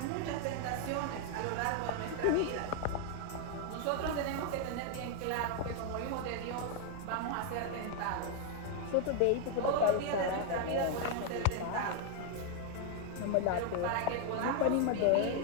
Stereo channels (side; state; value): both; different; correlation 0.00